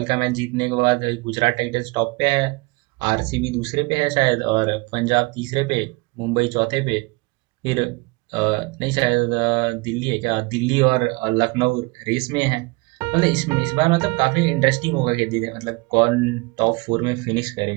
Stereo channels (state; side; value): quieter; left; 25.5 dB